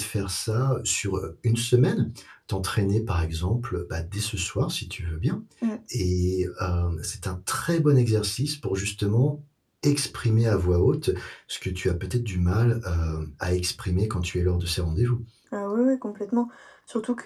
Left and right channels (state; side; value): identical; both; correlation 1.00